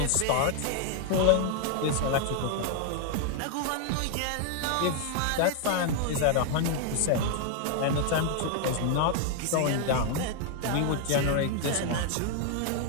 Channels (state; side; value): different; both; correlation 0.00